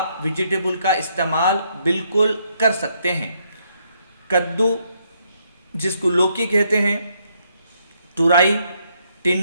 वेजिटेबल का इस्तेमाल बिल्कुल कर सकते हैं। कद्दू, जिसको लौकी कहते हैं, तुरई,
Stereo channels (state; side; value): inverted; both; correlation -0.73